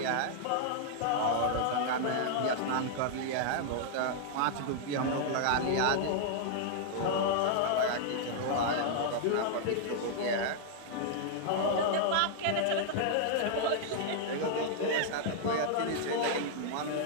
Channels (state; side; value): different; both; correlation -0.01